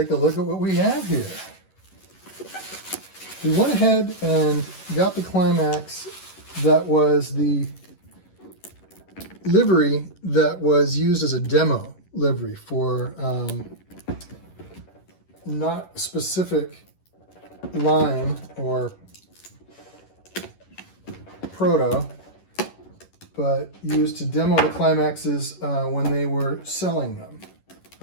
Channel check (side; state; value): right; late; 11 ms